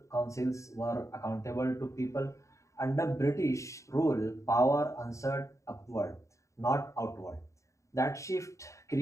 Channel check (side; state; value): right; late; 0.15 ms